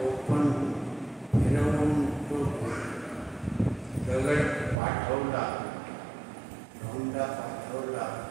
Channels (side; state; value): left; drops out; at 4.8 s